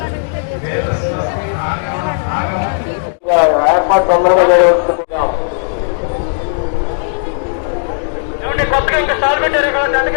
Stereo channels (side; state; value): right; silent; digital silence